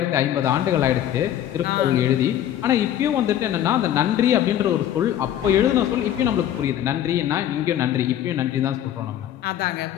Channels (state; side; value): quieter; right; 11.2 dB